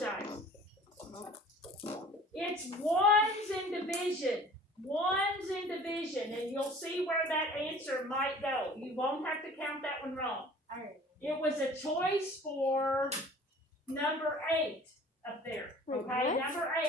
It's ones in division. Ones in division, and you'll see where that answer might go. You won't have to count that one wrong. It was a choice for number 8 up there. Okay, number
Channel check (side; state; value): both; normal; correlation 0.47